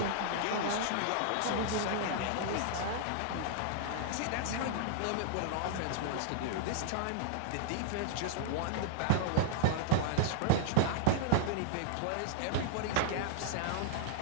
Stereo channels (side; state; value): both; different; correlation -0.01